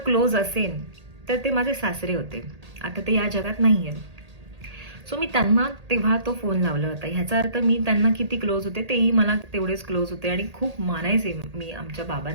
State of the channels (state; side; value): late; left; 1.8 ms